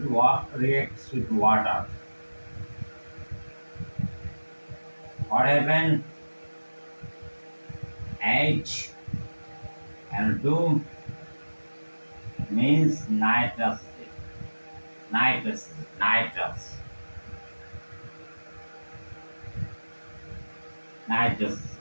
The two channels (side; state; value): both; inverted; correlation -1.00